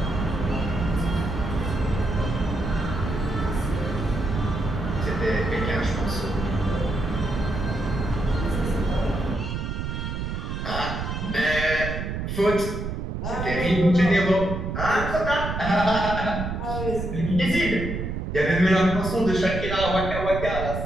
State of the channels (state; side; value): noise; right; rumble, 4 dB below the sound